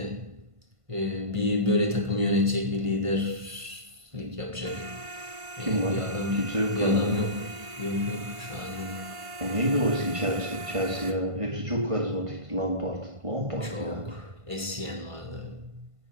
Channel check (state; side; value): late; left; 1.5 ms